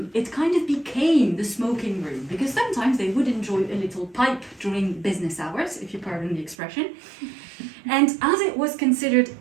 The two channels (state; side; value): drops out; left; at 6.6 s